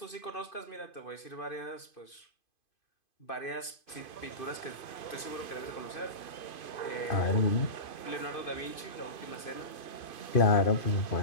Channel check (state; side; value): late; right; 2.5 ms